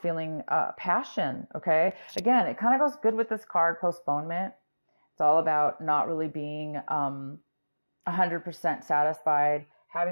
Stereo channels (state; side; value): inverted; both; correlation -1.00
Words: feeling passion, okay? Again, it kind of goes good with this card, postponement. It's all about not really being 100% satisfied,